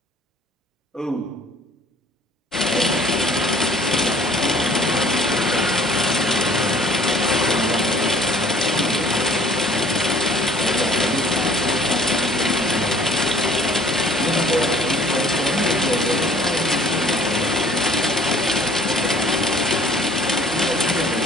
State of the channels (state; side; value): normal; both; correlation 0.54